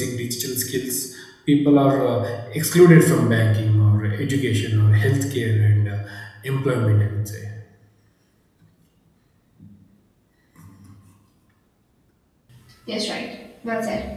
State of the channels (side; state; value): both; identical; correlation 1.00